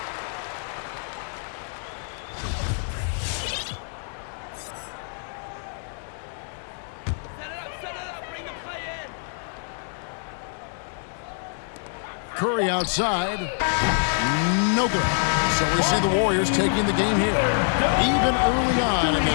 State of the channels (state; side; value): silent; right; 61 dB below the other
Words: Curry outside. No good. So we see the Warriors taking the game here. Even early on in